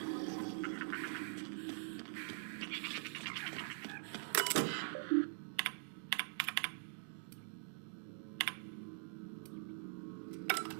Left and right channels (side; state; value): left; silent; digital silence